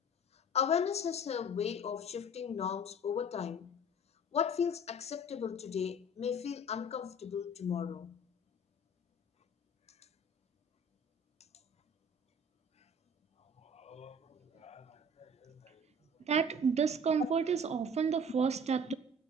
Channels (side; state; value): both; normal; correlation 0.45